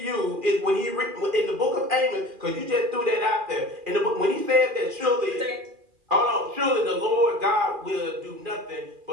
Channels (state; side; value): late; left; 2.4 ms